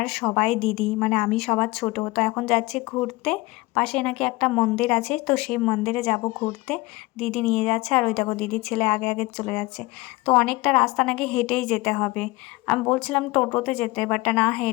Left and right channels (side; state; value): right; quieter; 21.6 dB